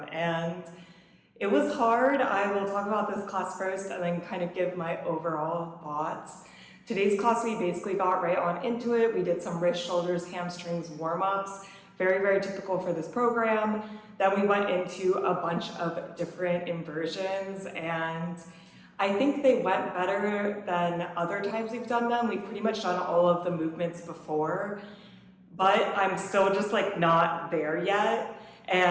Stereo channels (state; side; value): identical; both; correlation 1.00